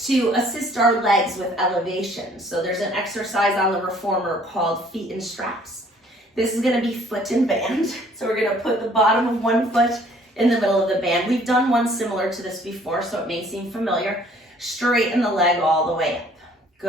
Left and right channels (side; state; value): both; normal; correlation 0.58